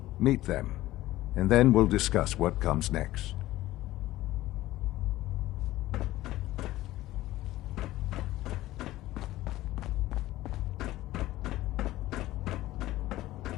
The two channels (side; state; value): right; quieter; 16.1 dB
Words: Meet them, and then we'll discuss what comes next.